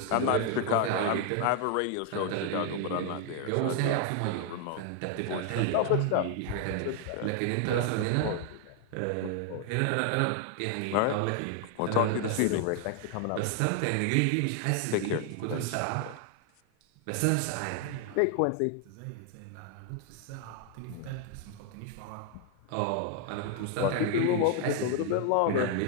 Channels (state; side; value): different; both; correlation 0.00